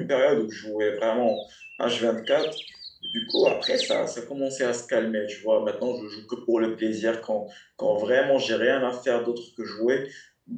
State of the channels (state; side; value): identical; both; correlation 1.00